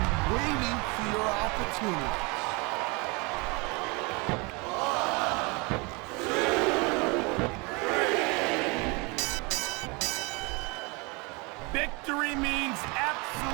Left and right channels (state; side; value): quieter; left; 28.2 dB